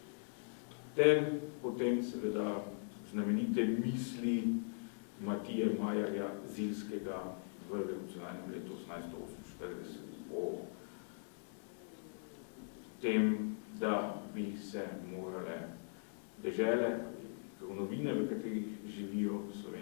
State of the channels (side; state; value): right; silent; digital silence